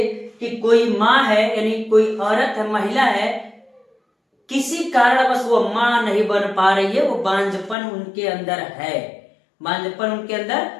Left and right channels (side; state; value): right; drops out; at 7.8 s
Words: कि कोई माँ है यानी कोई औरत है, महिला है, किसी कारणवश वो माँ नहीं बन पा रही है, वो बांझपन उनके अंदर है, बांझपन उनके अंदर